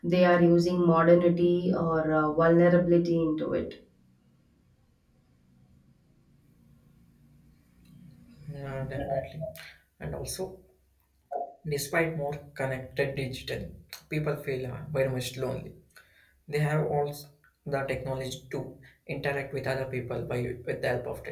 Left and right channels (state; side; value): identical; both; correlation 1.00